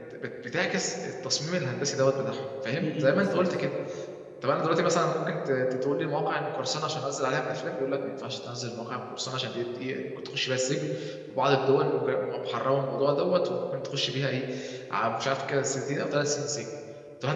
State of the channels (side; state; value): both; identical; correlation 1.00